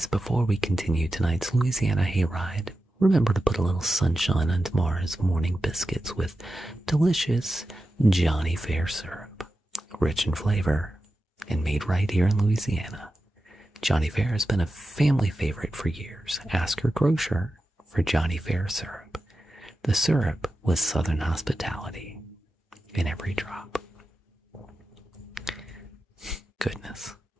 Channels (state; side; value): normal; both; correlation 0.92